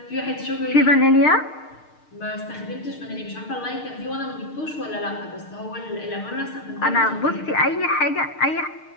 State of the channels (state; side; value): late; right; 6.6 ms